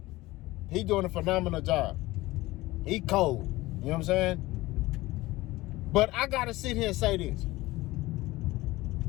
He doing a phenomenal job. He cold, you know what I'm saying? But I got to sit here and say this.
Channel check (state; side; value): quieter; right; 19.0 dB